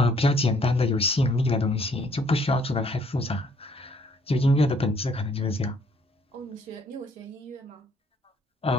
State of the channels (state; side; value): normal; both; correlation 0.63